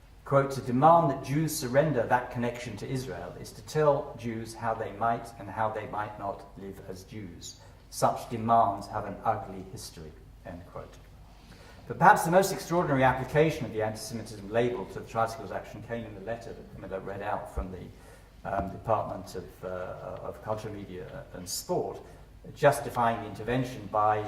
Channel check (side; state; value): both; identical; correlation 1.00